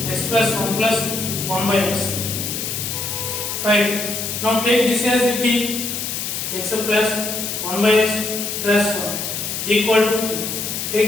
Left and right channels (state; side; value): noise; left; hiss, 4 dB below the sound